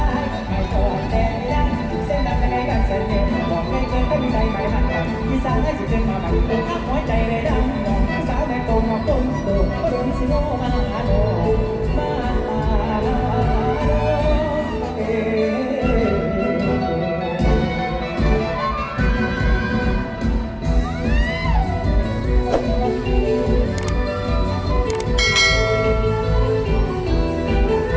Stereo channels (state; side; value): identical; both; correlation 1.00